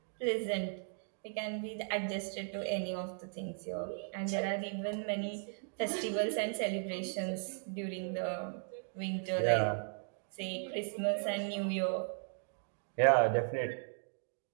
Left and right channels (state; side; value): silent; left; 53 dB below the other